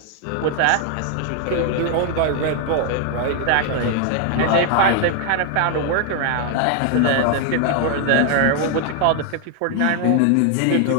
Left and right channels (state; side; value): different; both; correlation 0.00